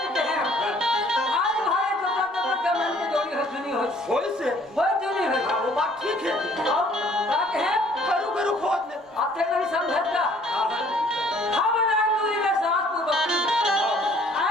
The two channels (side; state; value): both; normal; correlation 0.58